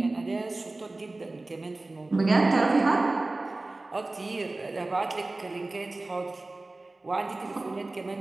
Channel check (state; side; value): quieter; left; 3.0 dB